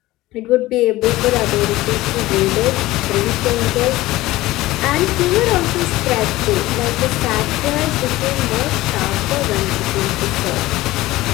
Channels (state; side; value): quieter; right; 17.6 dB